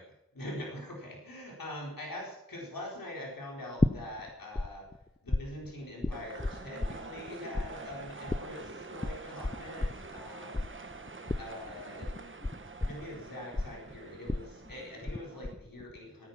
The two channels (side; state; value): both; normal; correlation 0.75